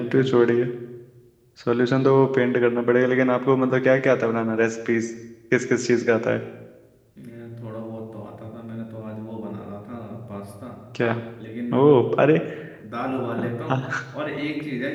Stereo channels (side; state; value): both; identical; correlation 1.00